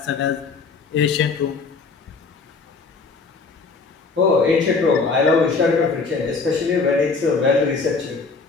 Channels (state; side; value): quieter; right; 4.4 dB